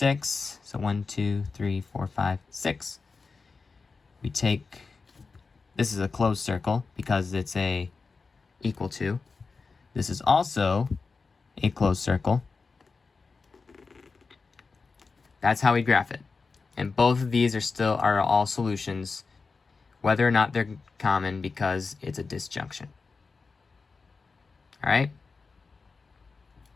So 1, 2, 3, 4, 5, 6. We take, this is a closed circle because it's a equal to. This is also a closed circle. That's how we graph it. And both of these are all solutions, whether or not they're common, because it's a disjunction. All right?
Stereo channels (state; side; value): quieter; right; 4.5 dB